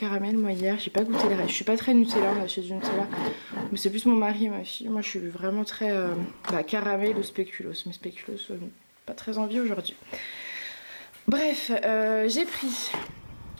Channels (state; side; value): inverted; both; correlation -1.00